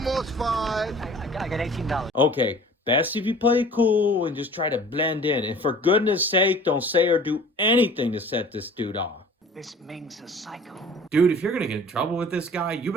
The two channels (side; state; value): both; normal; correlation 0.46